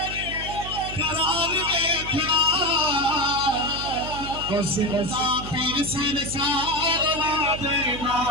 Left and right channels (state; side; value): noise; right; hum, 10 dB below the sound